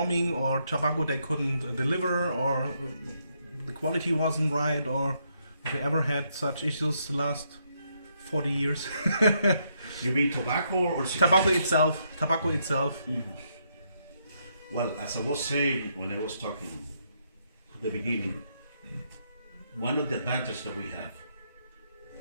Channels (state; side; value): inverted; both; correlation -0.76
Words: or tobacco they couldn't deliver, or the quality wasn't right, or have you ever had such issues the last 40 years? You mean tobacco or cigars? Tobacco itself. Mhm. Well, as I was saying when I was talking at the beginning, one of the advantages that we have